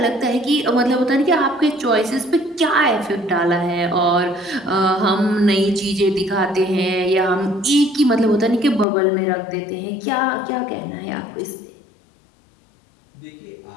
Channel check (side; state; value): right; drops out; at 8.8 s